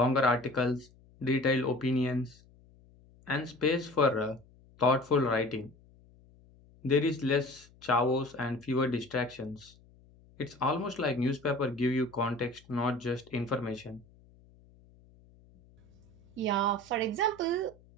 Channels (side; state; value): left; noise; hum, 27 dB below the sound